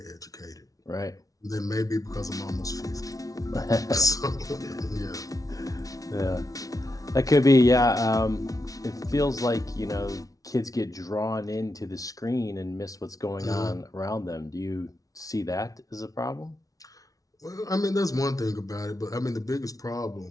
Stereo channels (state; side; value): late; right; 0.18 ms